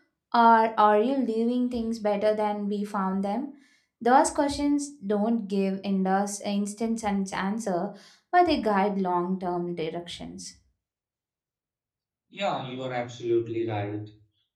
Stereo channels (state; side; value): identical; both; correlation 1.00